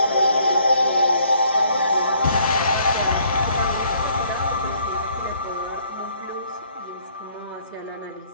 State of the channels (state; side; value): inverted; both; correlation -0.64